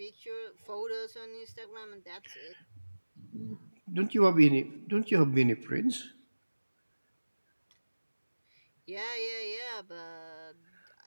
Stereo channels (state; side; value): inverted; both; correlation -1.00